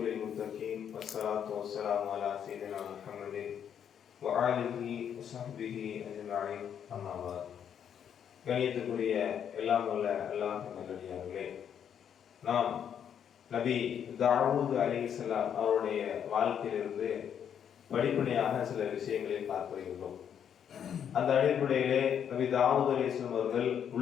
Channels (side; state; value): right; quieter; 8.6 dB